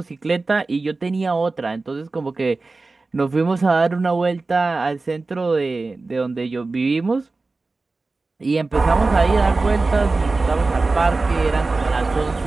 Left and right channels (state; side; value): quieter; left; 3.6 dB